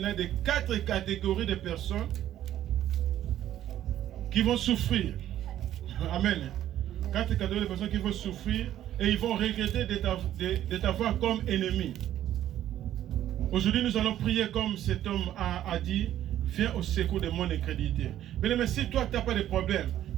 des 4 catégories de personnes qui vont souffrir. Amen. 4 catégories de personnes qui vont souffrir et ils vont regretter de t'avoir comme ennemi. Aujourd'hui, nous allons prier comme cet homme a dit, viens au secours de mon incrédulité. Mais si toi, tu n'as pas de problème,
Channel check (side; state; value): left; quieter; 12.1 dB